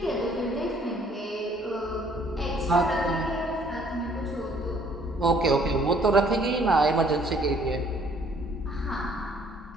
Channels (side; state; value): both; normal; correlation 0.61